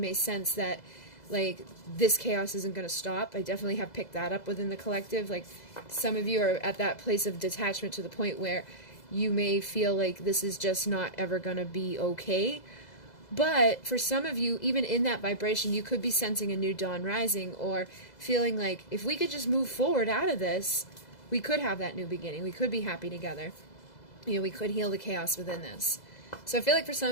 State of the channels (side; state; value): right; late; 2.0 ms